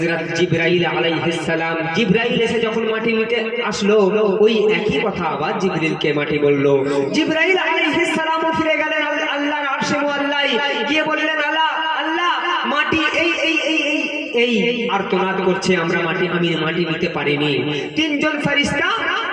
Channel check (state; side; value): identical; both; correlation 1.00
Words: জিবরাইল আলাইহিস সালাম। জিবরাইল এসে যখন মাটি নিতে আসলো, ওই একই কথা আবার জিবরিলকে মাটি বলল। জিবরাইল আলাইহিস সালামও ফিরে গেলেন আল্লাহর আরশে মুআল্লায়, গিয়ে বললেন আল্লাহ আল্লাহ মাটি এই এই এই এই আর্তনাদ করছে, আমি মাটি নিতে পারিনি। তিনজন ফেরেশতা